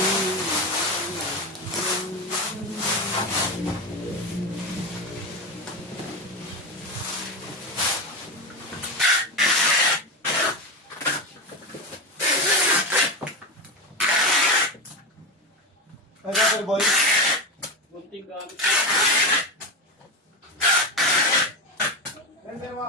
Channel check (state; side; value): normal; both; correlation 0.18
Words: Ay, Pepper Boy. Bunting gamit. Pepper Boy,